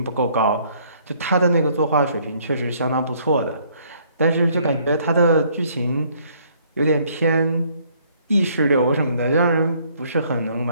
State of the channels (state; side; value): inverted; both; correlation -0.64